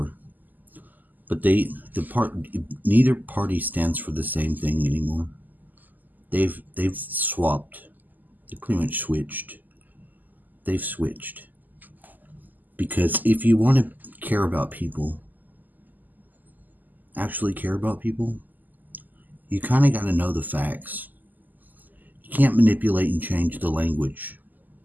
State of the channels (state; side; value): late; left; 0.084 ms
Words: But neither party stands for the same thing anymore. They've swapped. They pretty much switched. They've switched. Because if you want to care about people, actually care about people, you kind of got to know the facts. You can't manipulate and change the language.